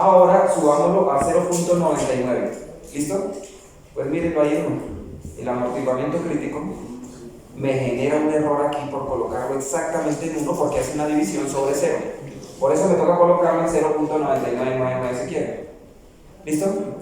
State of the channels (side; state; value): both; identical; correlation 1.00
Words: subámoslo a 0.99. ¿Listo? Pues mírenlo ahí uno. El amortiguamiento crítico me genera un error aquí por colocarlo exactamente en 1 porque hace una división sobre 0. Por eso me toca colocarlo en 0.9999 si quiere. ¿Listo?